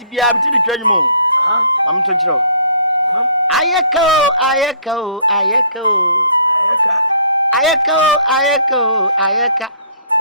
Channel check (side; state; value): both; inverted; correlation -0.57